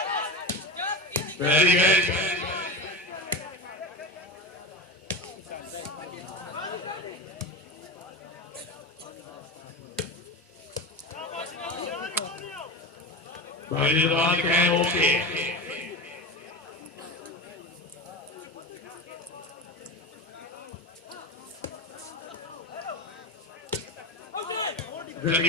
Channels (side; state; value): both; normal; correlation 0.24